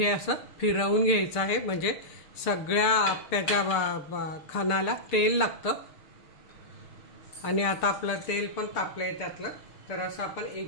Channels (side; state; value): right; late; 6.7 ms